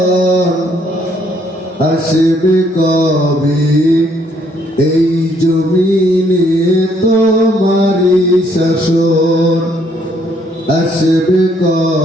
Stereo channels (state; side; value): normal; both; correlation 0.68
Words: আসবে কবে এই জমিনে তোমারি শাসন, আসবে